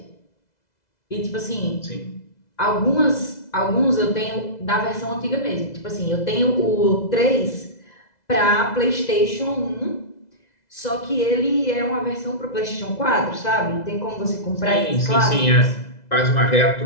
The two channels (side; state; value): right; late; 2.0 ms